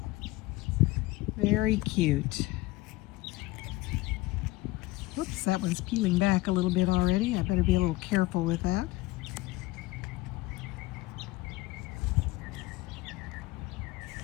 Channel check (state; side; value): quieter; right; 19.1 dB